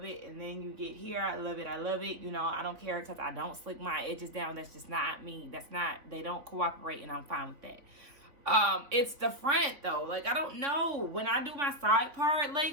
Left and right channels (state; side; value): late; left; 3.5 ms